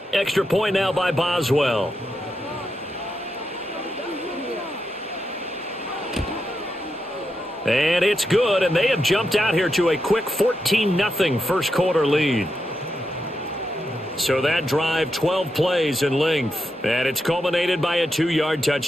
Extra point now by Boswell. And it's good, and they have jumped out here to a quick 14-0 first quarter lead. So that drive, 12 plays in length, and it's culminated by a 2-yard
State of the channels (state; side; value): normal; both; correlation 0.85